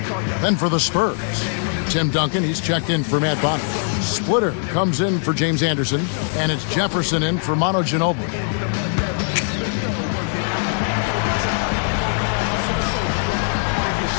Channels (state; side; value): silent; right; 60 dB below the other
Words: Then for the Spurs, Tim Duncan, he's checked in for Matt Bonner. Splitter comes in for James Anderson. And it's Jefferson in for Manu Ginobili.